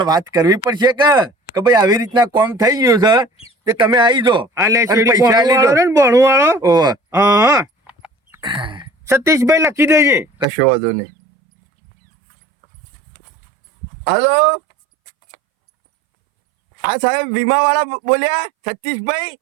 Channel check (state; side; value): drops out; left; at 10.5 s